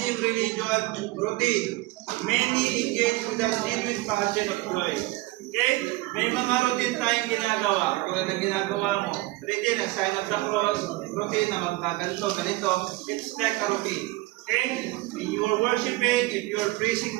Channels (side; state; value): left; quieter; 19.7 dB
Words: religion, routine. Many engage with the genuine passion of joy. Okay? May mga routine tayong ginagawa. Kung ano ginagawa mo, routine, ang sign of the cross, routine na magkaganto, ganito. It's like a routine. Okay? When you are worshiping, if you are praising